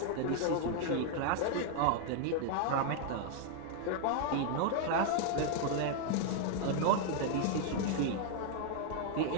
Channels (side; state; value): both; different; correlation 0.00